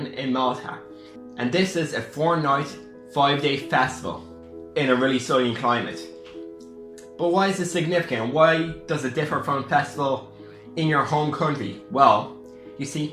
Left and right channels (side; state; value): both; identical; correlation 1.00